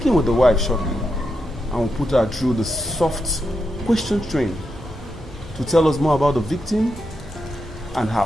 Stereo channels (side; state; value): both; normal; correlation 0.85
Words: with the wife shortly, and we'll put her through the soft question train to tell us more about the victim and her